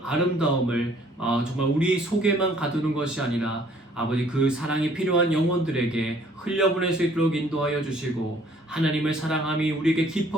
아름다움을 정말 우리 속에만 가두는 것이 아니라 아버지 그 사랑이 필요한 영혼들에게 흘려보낼 수 있도록 인도하여 주시고 하나님을 사랑함이 우리에게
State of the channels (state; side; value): normal; both; correlation 0.59